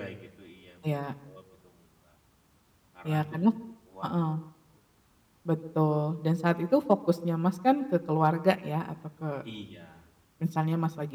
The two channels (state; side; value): identical; both; correlation 1.00